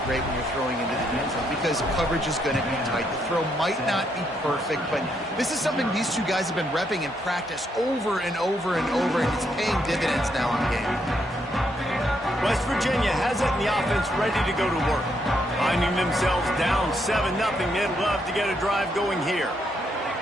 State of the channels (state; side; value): normal; both; correlation 0.76